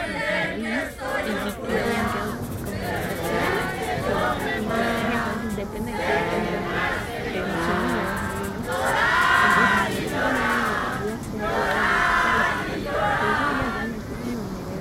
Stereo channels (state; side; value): identical; both; correlation 1.00